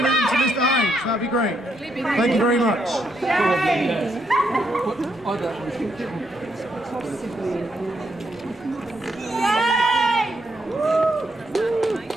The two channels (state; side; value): normal; both; correlation 0.78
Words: them to Mr. Hines. That'd be great. Thank you very much.